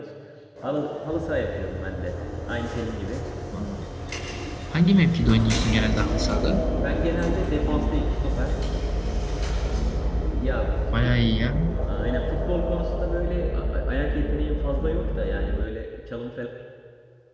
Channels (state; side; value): identical; both; correlation 1.00